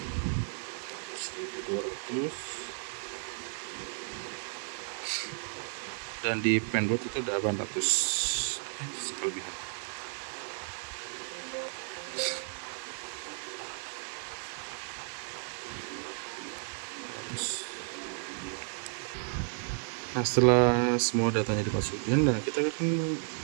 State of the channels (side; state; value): left; silent; 56 dB below the other